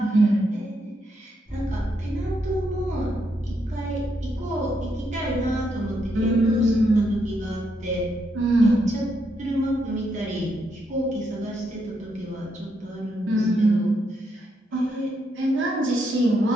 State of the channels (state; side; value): normal; both; correlation 0.78